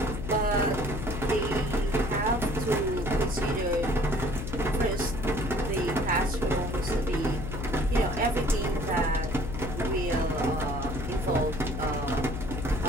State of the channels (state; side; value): noise; left; hum, 5 dB below the sound